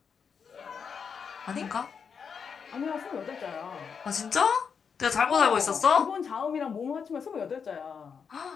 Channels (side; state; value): right; quieter; 6.4 dB